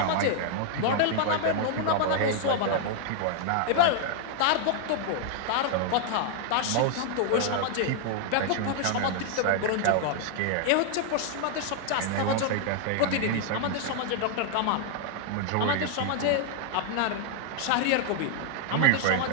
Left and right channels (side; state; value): both; different; correlation 0.00